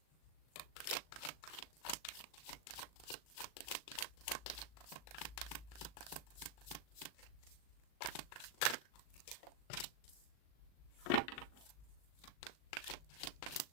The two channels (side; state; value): right; late; 38 ms